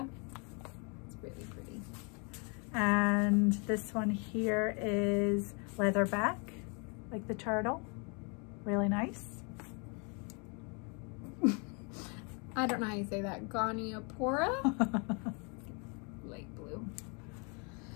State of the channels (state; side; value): quieter; right; 34.2 dB